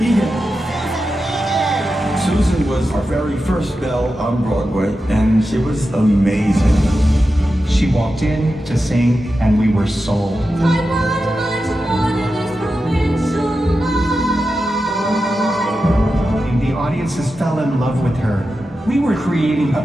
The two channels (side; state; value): both; normal; correlation 0.91